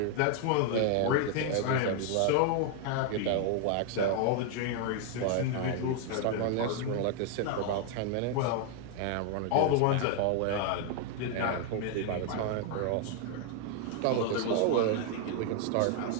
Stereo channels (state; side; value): different; both; correlation 0.00